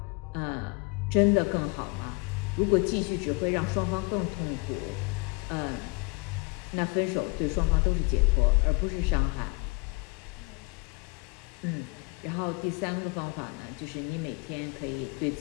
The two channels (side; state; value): right; quieter; 29.4 dB